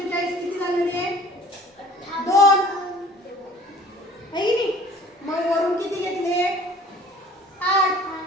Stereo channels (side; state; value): both; normal; correlation 0.49